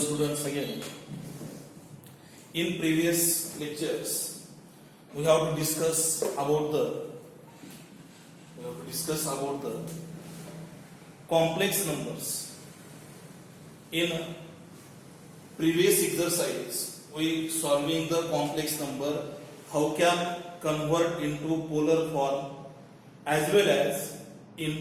again. In previous lectures, we have to discuss about the complex numbers. In previous exercise, we solving the complex number, how can convert into polar form as well as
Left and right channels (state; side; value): identical; both; correlation 1.00